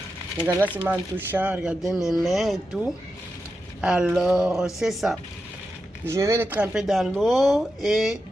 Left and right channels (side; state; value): both; normal; correlation 0.89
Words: Regardez là, c'est en touchant. Regardez mes mains et tout. Alors, c'est ça. Je vais les tremper dans l'eau et